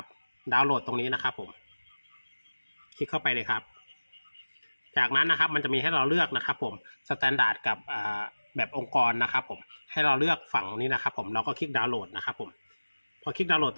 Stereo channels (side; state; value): both; inverted; correlation -1.00